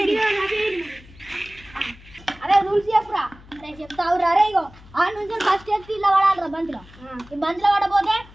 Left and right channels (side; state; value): left; noise; hum, 22 dB below the sound